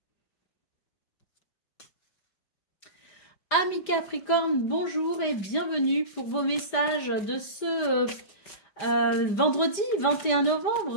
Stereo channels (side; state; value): right; late; 5.0 ms